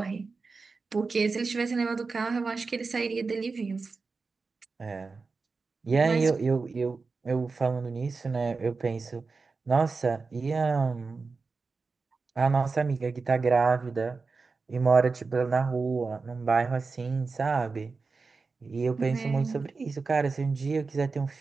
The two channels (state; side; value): quieter; left; 4.3 dB